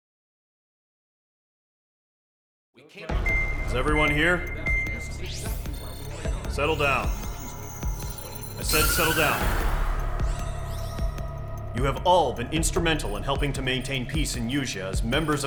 Is everyone here? Settle down. I said settle down. You have all been instrumental in helping to maintain peace in Usea as members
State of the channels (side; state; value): both; identical; correlation 1.00